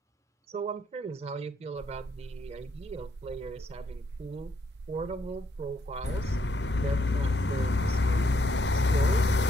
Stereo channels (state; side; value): normal; both; correlation 0.73